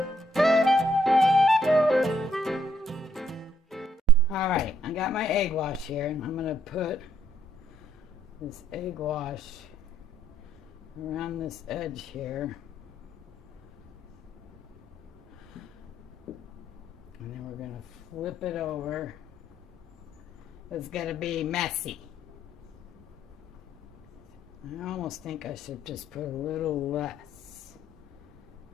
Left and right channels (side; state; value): both; normal; correlation 0.70